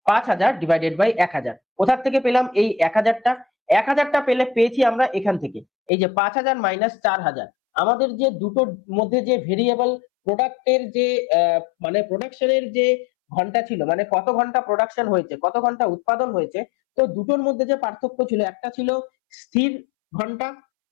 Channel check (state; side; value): drops out; right; at 5.9 s